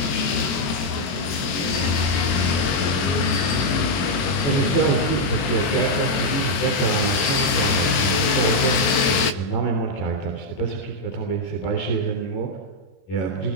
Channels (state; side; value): late; right; 22 ms